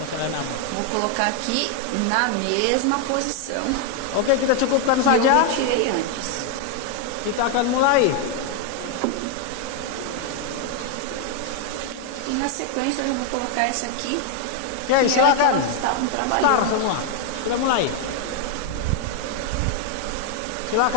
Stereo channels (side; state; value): both; different; correlation 0.01